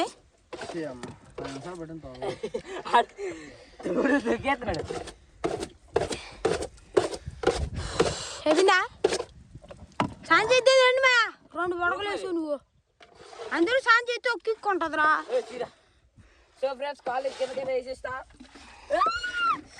చెప్పిందా సాయం చేద్దే రండి మా 2 బొడకలు వేసావు నువ్వు. అందరూ సాయం చేస్తే ఒక్కిక్కుంటుందిరా. సో ఫ్రెండ్స్ కాలేజ్ కిందకైనా వేసేస్తా.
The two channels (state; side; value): identical; both; correlation 1.00